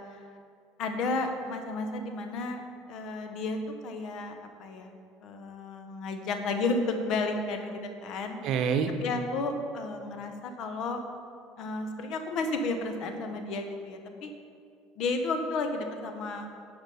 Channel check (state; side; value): normal; both; correlation 0.46